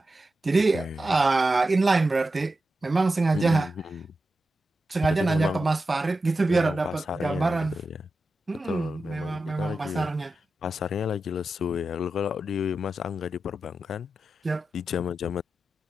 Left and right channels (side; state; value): both; normal; correlation 0.91